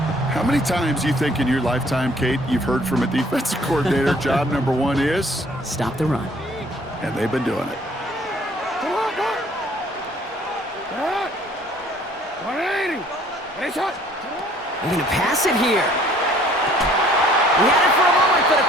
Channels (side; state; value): both; normal; correlation 0.58